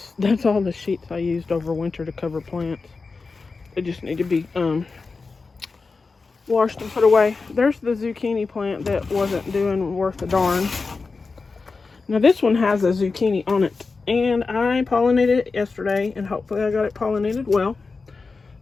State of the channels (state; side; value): quieter; right; 4.3 dB